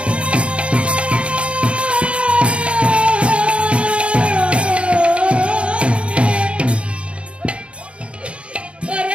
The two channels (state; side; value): late; left; 0.059 ms